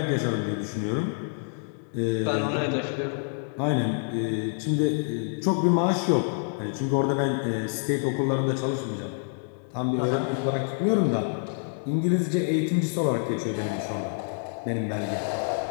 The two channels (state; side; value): silent; right; digital silence